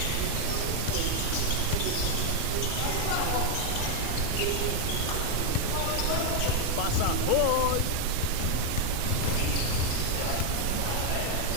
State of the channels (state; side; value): different; both; correlation 0.01